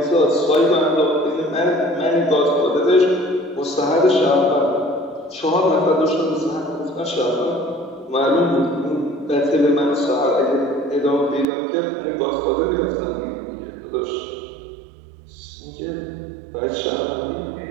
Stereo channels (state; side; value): drops out; left; at 11.5 s